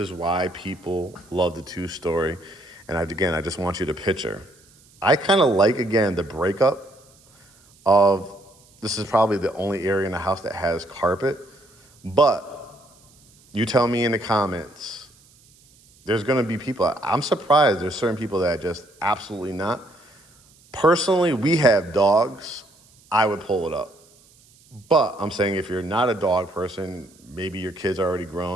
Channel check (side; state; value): right; noise; hiss, 29 dB below the sound